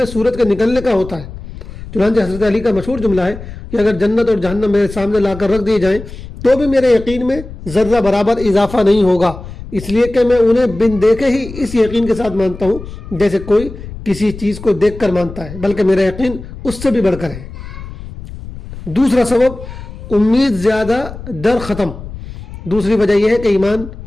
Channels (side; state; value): left; noise; rumble, 13 dB below the sound